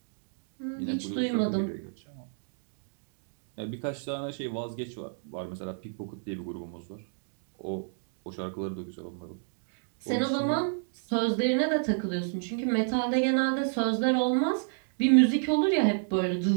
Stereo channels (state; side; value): silent; left; digital silence